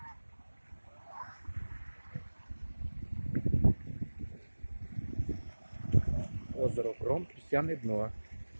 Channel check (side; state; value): both; inverted; correlation -1.00